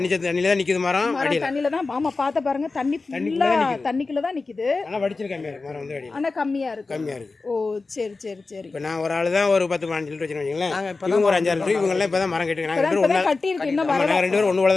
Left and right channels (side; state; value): right; quieter; 3.8 dB